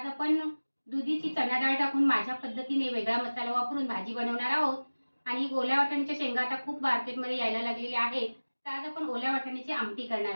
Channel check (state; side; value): inverted; both; correlation -1.00